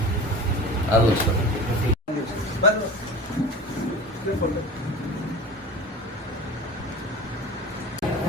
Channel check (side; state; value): both; normal; correlation 0.35